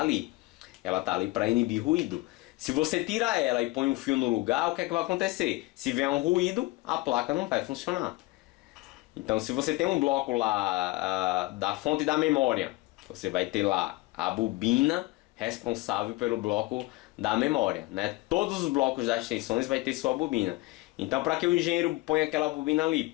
Ela está ali para inibir ruído. Se você tira ela e põe um fio no lugar, o que é que vai acontecer? Se vier um ruído, a placa não vai funcionar. Então se você tem um bloco lá da fonte da memória, você vai ter lá a bobina responsável pelo bloco da memória, né? Todos os blocos das tensões vai ter sua bobina. Então para que o engenheiro ponha aquela bobina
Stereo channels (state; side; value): quieter; right; 21.0 dB